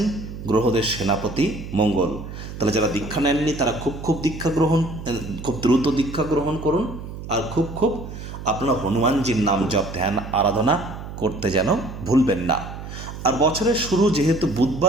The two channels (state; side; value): noise; right; hum, 10 dB below the sound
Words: গ্রহদের সেনাপতি মঙ্গল। তাহলে যারা দীক্ষা নেননি তারা খুব দ্রুত দীক্ষা গ্রহণ করুন, আর খুব আপনারা হনুমানজির নাম জপ ধ্যান আরাধনা করতে যেন ভুলবেন না। আর বছরের শুরু যেহেতু